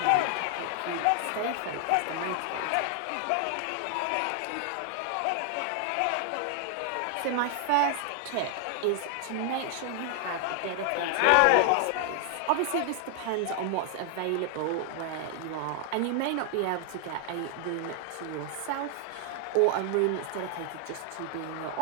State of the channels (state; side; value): different; both; correlation 0.00